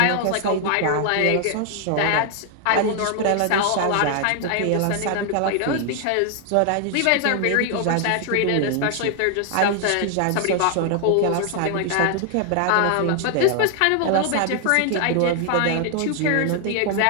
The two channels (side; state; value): both; different; correlation 0.00